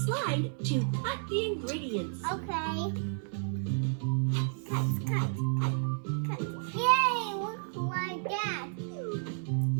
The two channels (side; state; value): left; silent; 57 dB below the other